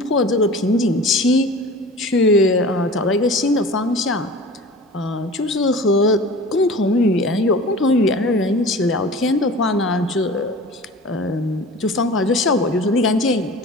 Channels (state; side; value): normal; both; correlation 0.39